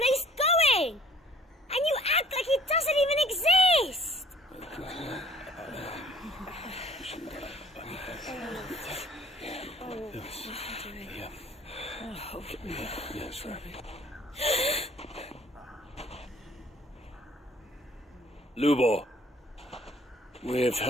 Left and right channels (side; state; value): both; normal; correlation 0.56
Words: going. And you act like it doesn't even exist. Lubor, we've